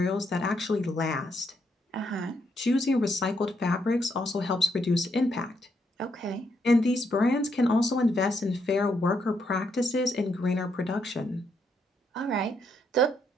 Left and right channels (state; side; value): normal; both; correlation 0.76